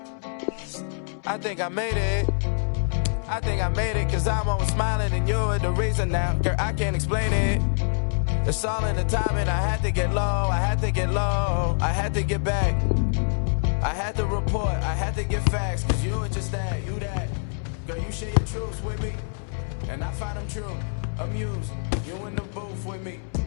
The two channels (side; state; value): right; silent; digital silence